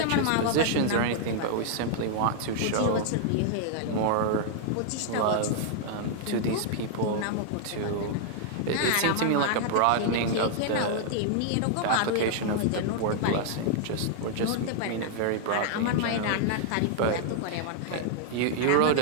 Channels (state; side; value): different; both; correlation 0.00